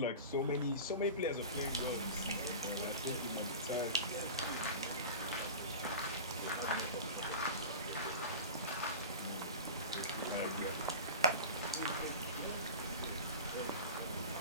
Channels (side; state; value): both; inverted; correlation -0.32